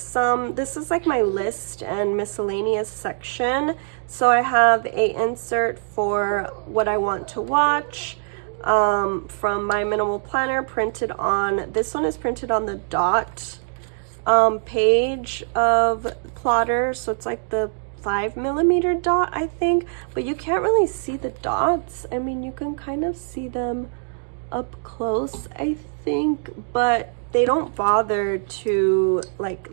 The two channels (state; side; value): silent; left; digital silence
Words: this is like my list and miscellaneous section. So I have a insert for what I want to watch from my minimal planner, printed on, this one is printed on the dot page of plotter. So it's like the 5mm dot, I think, but you can't really see the dots. I mean, you can kind of see them up close, I think, but they don't bother to